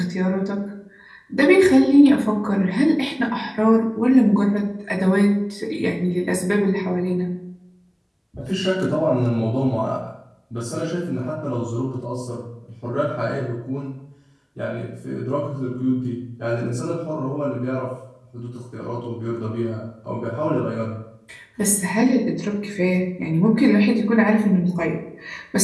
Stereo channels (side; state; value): both; identical; correlation 1.00